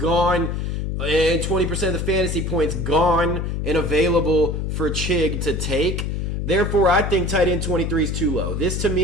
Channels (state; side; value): noise; left; hum, 2 dB below the sound